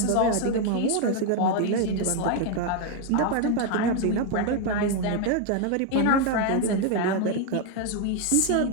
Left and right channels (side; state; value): both; different; correlation 0.00